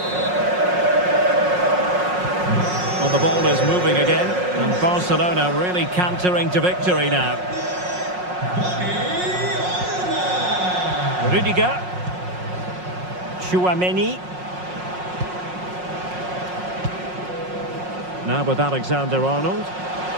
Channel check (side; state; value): left; late; 5.5 ms